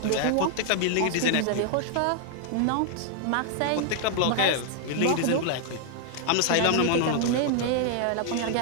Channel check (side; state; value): both; different; correlation 0.00